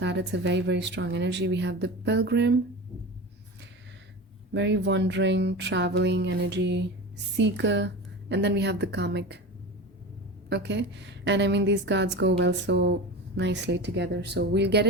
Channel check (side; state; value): both; normal; correlation 0.29